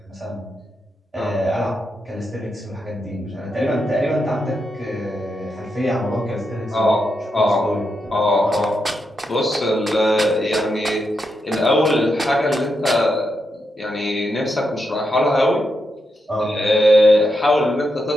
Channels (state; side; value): normal; both; correlation 0.84